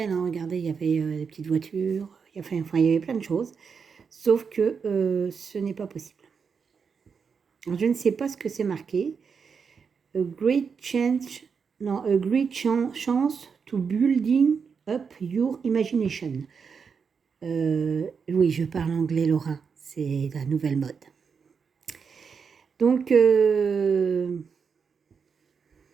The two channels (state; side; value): quieter; left; 6.0 dB